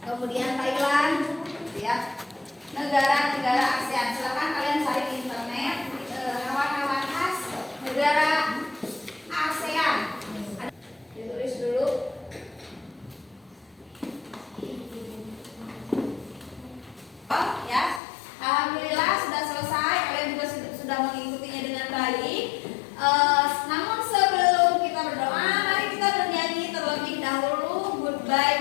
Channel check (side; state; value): right; drops out; at 18.0 s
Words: Kemudian Thailand ya. Negara-negara ASEAN. Silakan kalian cari di internet hewan-hewan khas negara